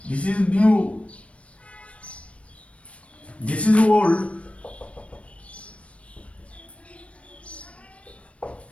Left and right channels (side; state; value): right; late; 0.063 ms